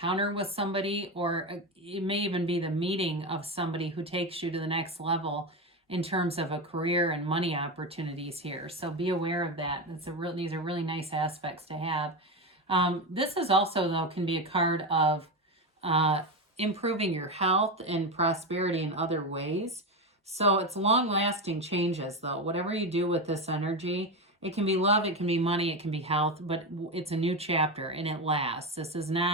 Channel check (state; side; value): normal; both; correlation 0.16